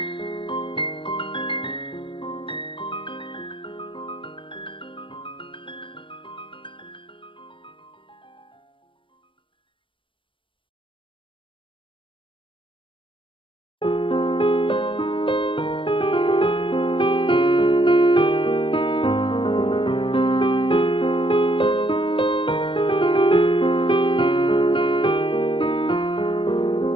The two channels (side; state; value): right; late; 0.25 ms